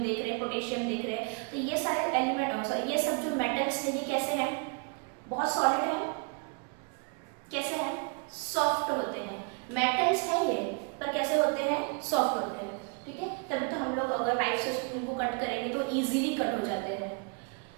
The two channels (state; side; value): quieter; left; 35.7 dB